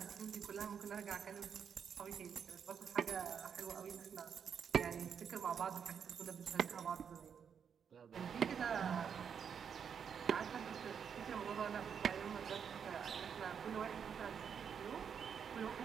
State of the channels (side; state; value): left; quieter; 7.3 dB